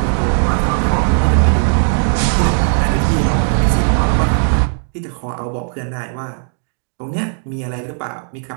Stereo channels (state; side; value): silent; left; 57 dB below the other